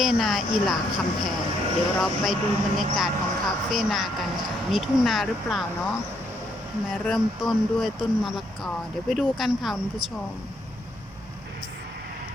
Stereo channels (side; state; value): both; normal; correlation 0.73